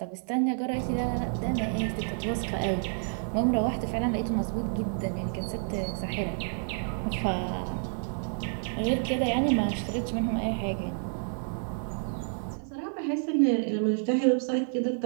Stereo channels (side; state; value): left; silent; 58 dB below the other